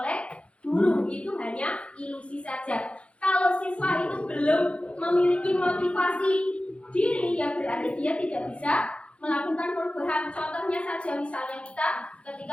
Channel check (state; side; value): late; right; 0.061 ms